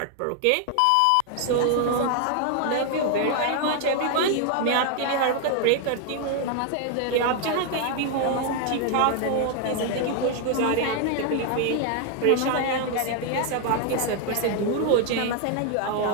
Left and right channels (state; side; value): different; both; correlation 0.00